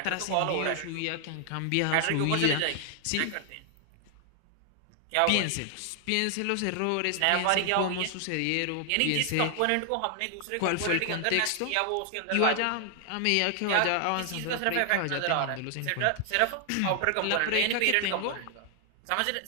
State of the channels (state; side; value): different; both; correlation 0.00